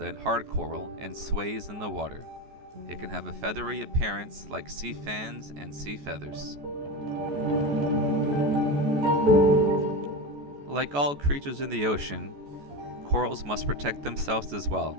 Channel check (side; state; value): left; late; 14 ms